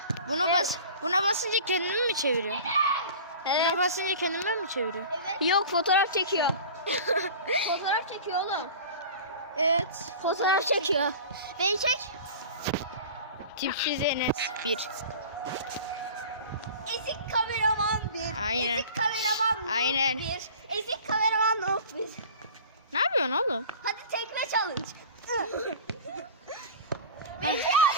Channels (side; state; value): both; inverted; correlation -0.38